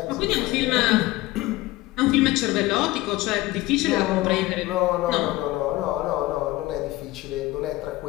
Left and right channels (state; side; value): quieter; right; 18.4 dB